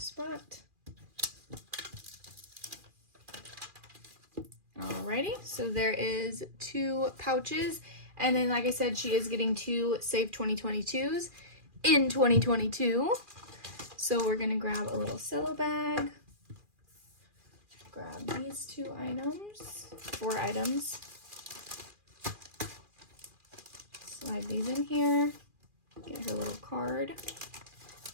Alrighty, so there is 2 pouches, and then like I said, she is getting 2 Save 2022s in 2022. So we're gonna grab a little cello bag, grab these 2 items, 4 items, slide these in here, get her little card.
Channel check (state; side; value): late; left; 2.4 ms